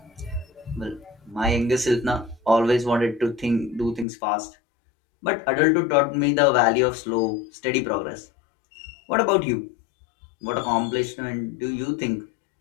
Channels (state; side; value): drops out; right; at 4.0 s